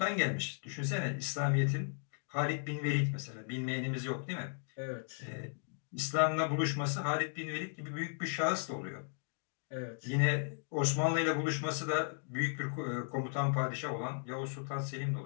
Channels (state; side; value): silent; right; digital silence